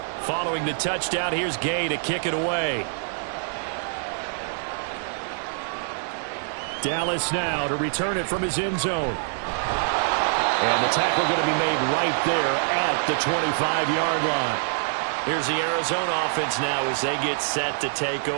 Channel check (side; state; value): left; silent; digital silence